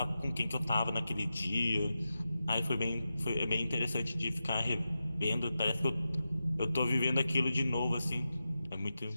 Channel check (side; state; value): both; inverted; correlation -0.91